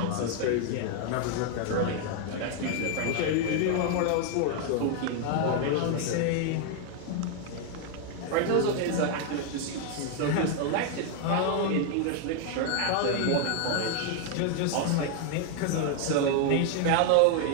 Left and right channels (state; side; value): different; both; correlation 0.00